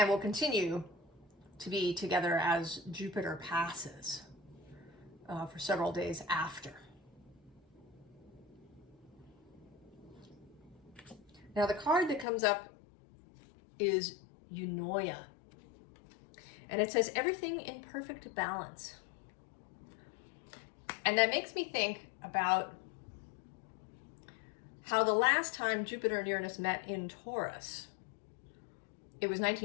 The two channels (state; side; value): drops out; right; at 12.2 s